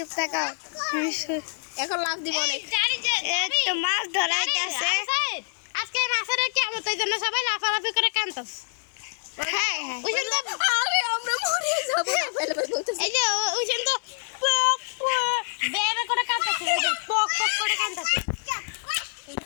থাকো, এখন লাভ দিব অনেক। এই তো মাছ ধরা হইতাছে। আজকে মাছের কিয়ামত, এই জন্য সবাই লাফালাফি করে কাঁদতাছে। হ্যাঁ ওই জন্য আরে আমরা মরে যাব না ফেলে বলতেছে। এই যে ওই জন্য পক পক বেবে করে কাঁদতাছে, পক পক করে কাঁদতাছে।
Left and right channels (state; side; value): silent; right; 57 dB below the other